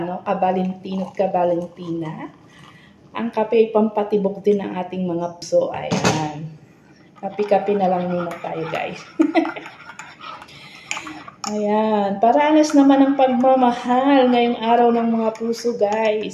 at kabalintina. Ang kape ay pampatibok din ng ating mga puso. Ayan. Kape-kape na lang muna tayo guys. Ayan. Paranas naman ang pagmamahal ngayong araw ng mga puso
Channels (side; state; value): both; identical; correlation 1.00